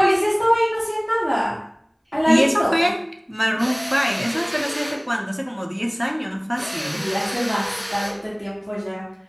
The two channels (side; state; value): both; identical; correlation 1.00